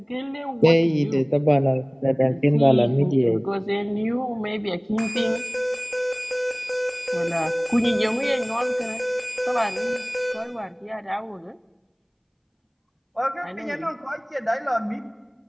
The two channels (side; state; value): both; identical; correlation 1.00